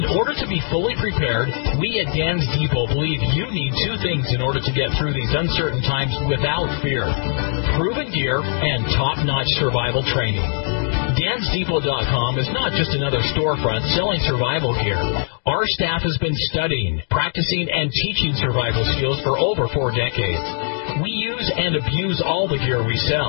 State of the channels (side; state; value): right; silent; digital silence